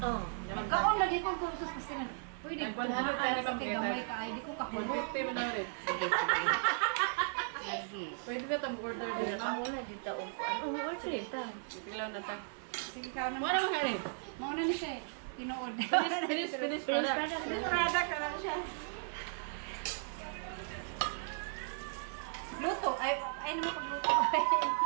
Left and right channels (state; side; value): silent; left; digital silence